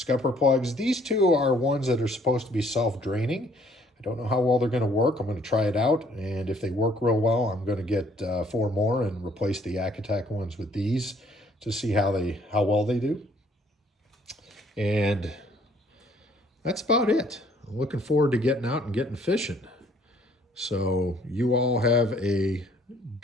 plugs. These 2 are ones that are supposed to be self-draining. I don't know how well they're going to work. I'm going to try it out, and if they work real well, I'm going to get 4 more and replace the Yak Attack ones with these to see how well they do. And that's about it. I'm looking forward to getting out and getting fishing. So you all have a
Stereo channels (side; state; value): both; normal; correlation 0.62